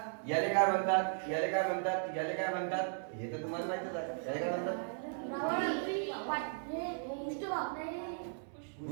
याले काय म्हणतात, याले काय म्हणतात, याले काय म्हणतात, हे तर तुम्हाला माहितीच आहे. याले काय म्हणतात?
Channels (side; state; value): left; silent; 53 dB below the other